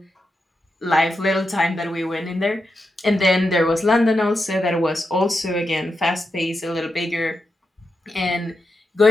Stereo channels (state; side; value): normal; both; correlation 0.87